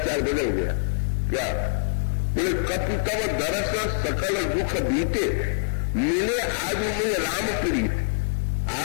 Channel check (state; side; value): silent; right; 62 dB below the other